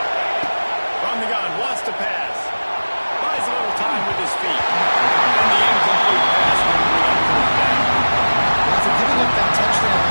From the gun, wants to pass. Buys a little time with his feet. And the incomplete pass will bring up third down. After giving up that touchdown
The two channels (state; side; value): inverted; both; correlation -1.00